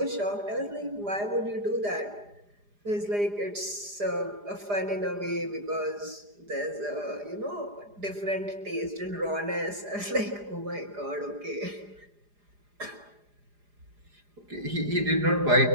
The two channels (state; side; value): late; left; 4.9 ms